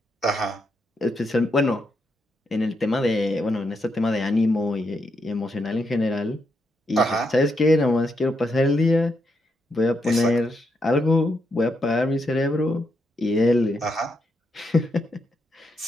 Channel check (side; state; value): both; normal; correlation 0.80